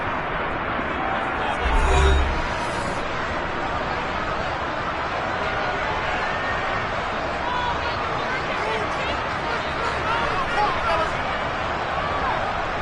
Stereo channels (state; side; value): identical; both; correlation 1.00